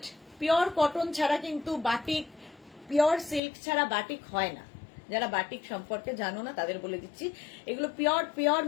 পিওর কটন ছাড়া কিন্তু বাটিক, পিওর সিল্ক ছাড়া বাটিক হয় না। যারা বাটিক সম্পর্কে জানো না তাদের বলে দিচ্ছি, এগুলো পিওর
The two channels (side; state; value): right; drops out; at 3.4 s